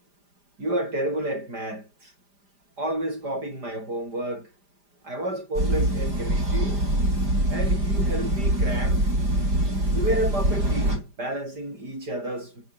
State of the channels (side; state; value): left; late; 5.0 ms